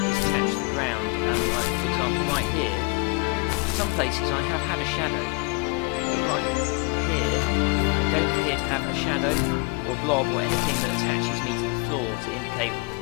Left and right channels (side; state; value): right; quieter; 29.0 dB